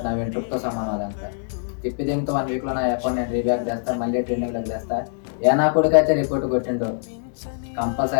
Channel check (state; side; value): silent; right; digital silence